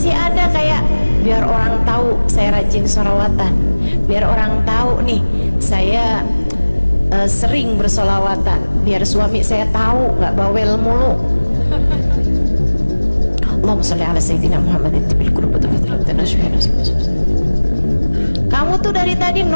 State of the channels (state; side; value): inverted; both; correlation -1.00